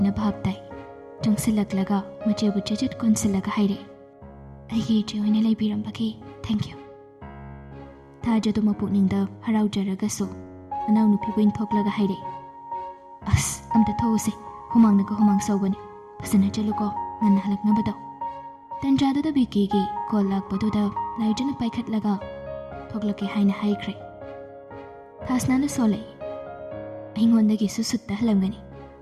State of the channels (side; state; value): both; identical; correlation 1.00